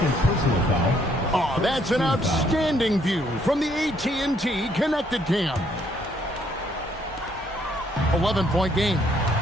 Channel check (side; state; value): both; normal; correlation 0.68